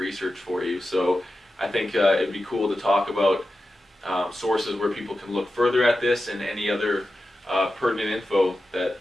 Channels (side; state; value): both; normal; correlation 0.92